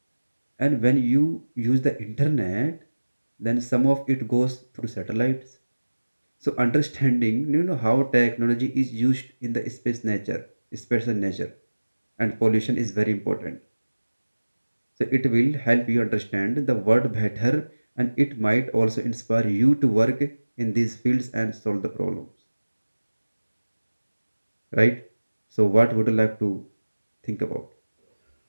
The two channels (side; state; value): both; inverted; correlation -1.00